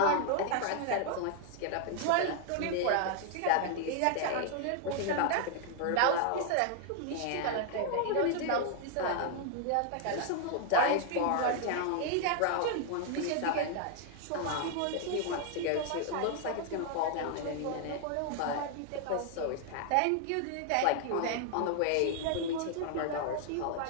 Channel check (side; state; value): both; different; correlation 0.00